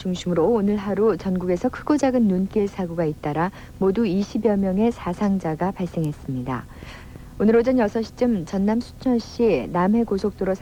오늘 하루 전국에서 크고 작은 눈길 사고가 잇따라 모두 20여 명의 사상자가 발생했습니다. 오늘 오전 6시쯤 전남 순천시 남해고속도로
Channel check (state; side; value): identical; both; correlation 1.00